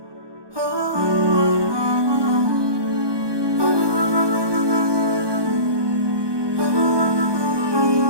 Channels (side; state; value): left; late; 1.2 ms